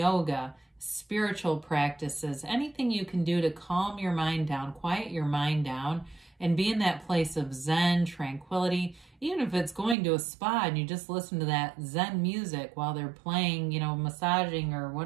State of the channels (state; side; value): drops out; left; at 10.0 s